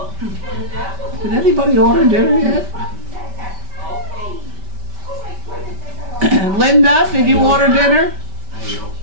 Did anybody order dinner yet? Linda, did you order dinner? She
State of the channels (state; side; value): late; left; 5.1 ms